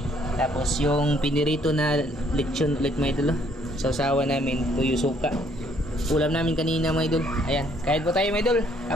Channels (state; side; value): normal; both; correlation 0.65